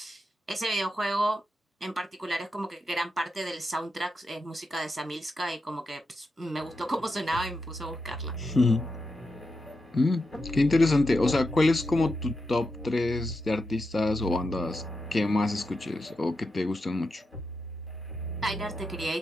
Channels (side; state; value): both; normal; correlation 0.86